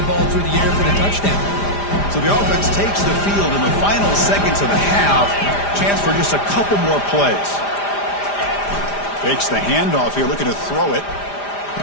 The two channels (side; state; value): right; late; 5.0 ms